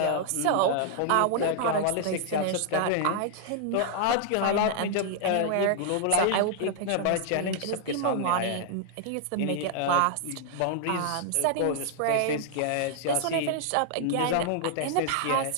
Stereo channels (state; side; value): different; both; correlation 0.00